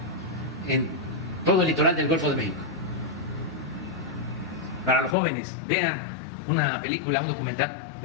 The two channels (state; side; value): drops out; right; at 5.2 s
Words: en todo el litoral del Golfo de México. Para los jóvenes, vean una película, un documental,